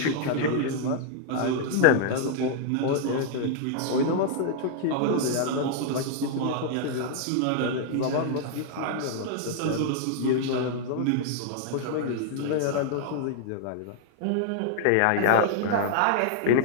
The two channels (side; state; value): both; different; correlation -0.01